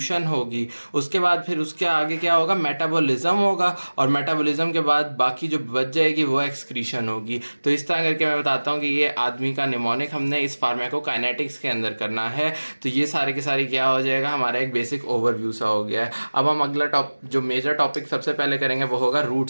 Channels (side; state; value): both; inverted; correlation -1.00